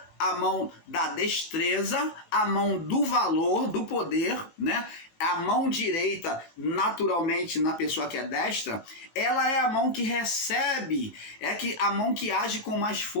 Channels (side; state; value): right; late; 19 ms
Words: a mão da destreza, a mão do valor, do poder, né? A mão direita, naturalmente, na pessoa que é destra, ela é a mão que recebe, a mão que age com mais